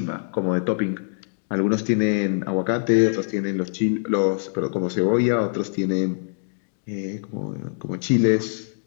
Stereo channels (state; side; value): silent; right; digital silence